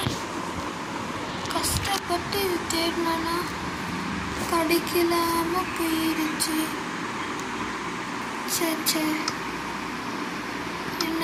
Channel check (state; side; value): identical; both; correlation 1.00